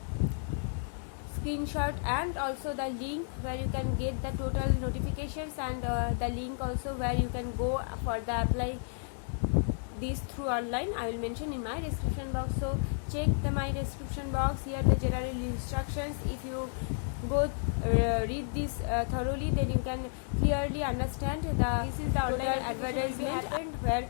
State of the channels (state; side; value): silent; right; digital silence